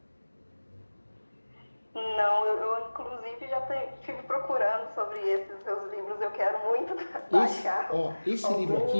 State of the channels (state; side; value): inverted; both; correlation -1.00